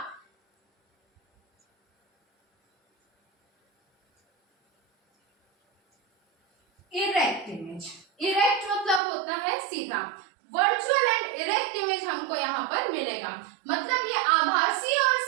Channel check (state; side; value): drops out; left; at 9.0 s